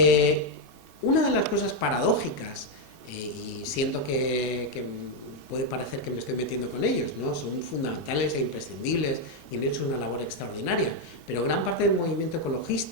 Una de las cosas paradójicas, y siento que puede parecer que me estoy metiendo con ellos, ¿no? Son fundamentales e imprescindibles y han hecho una labor extraordinaria, pero gran parte del movimiento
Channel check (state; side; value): normal; both; correlation 0.03